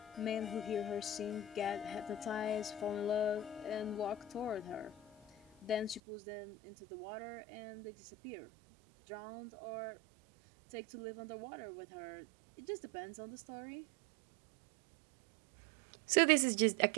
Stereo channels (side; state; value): left; drops out; at 6.0 s